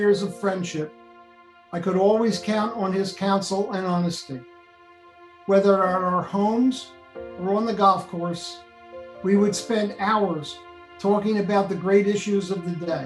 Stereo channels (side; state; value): both; identical; correlation 1.00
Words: of friendship, I could always count on his counsel and honesty. Whether at our homes or on the golf course, we would spend hours talking about the great issues of the